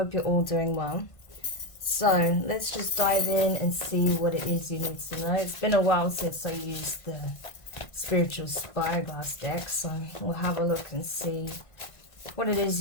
you're all doing well. So let's just dive in and see what it is you need to know. It's been a while since I used the Spiritual Spyglass deck, so we'll have a look and see what it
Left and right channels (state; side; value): late; right; 1.5 ms